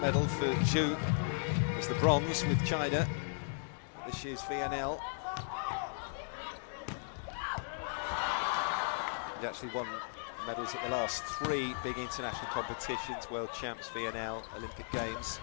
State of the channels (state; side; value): silent; right; digital silence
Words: for Zhu was the bronze with China. This year's VNL. He actually won medals at the last 3 big international competitions, World Champs, VNL, Olympic Games.